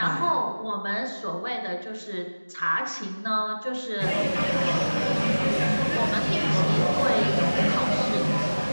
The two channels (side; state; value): both; inverted; correlation -1.00